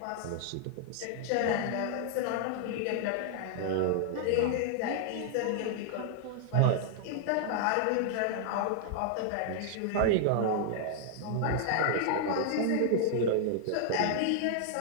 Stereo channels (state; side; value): different; both; correlation -0.01